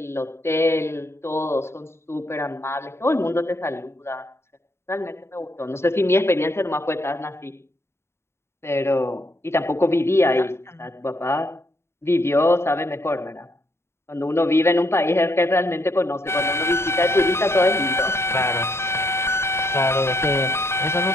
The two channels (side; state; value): right; late; 0.12 ms